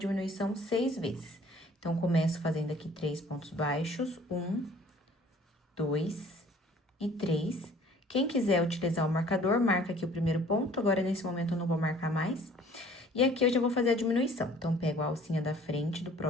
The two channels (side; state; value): both; normal; correlation 0.53